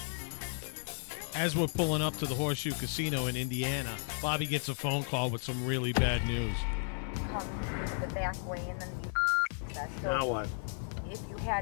As we're pulling up to the Horseshoe Casino in Indiana, Bobby gets a phone call with some really bad news. Comes the back way, and then you so Now what? if you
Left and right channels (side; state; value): right; silent; 55 dB below the other